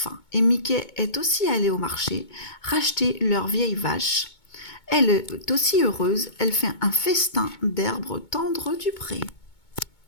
Et Mickey est aussi allé au marché racheter leur vieille vache. Elle est aussi heureuse. Elle fait un festin d'herbes tendres du pré.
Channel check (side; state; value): right; late; 2.2 ms